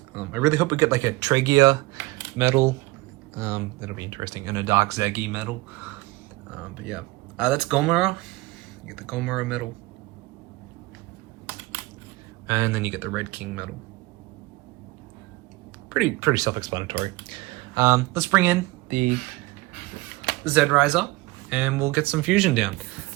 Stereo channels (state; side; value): quieter; left; 21.3 dB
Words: I really hope we get like a Tregia medal. That'll be interesting, and a Dark Zagi medal. But yeah, that's Gomora. You get the Gomora medal, and then you get the Red King medal. Pretty self-explanatory. Let's bring in the Z-Riser, and we'll get some fusion down.